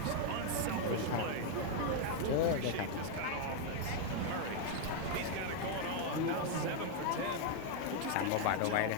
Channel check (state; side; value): different; both; correlation 0.01